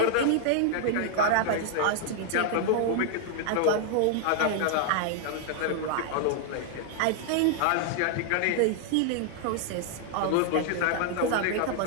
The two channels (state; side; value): different; both; correlation 0.00